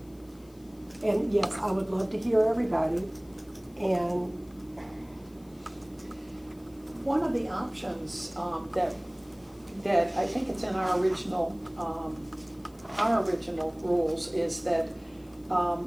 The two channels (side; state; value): left; noise; hiss, 29 dB below the sound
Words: And yes, I would love to hear everybody, and One of the options that I think it's in our original rules is that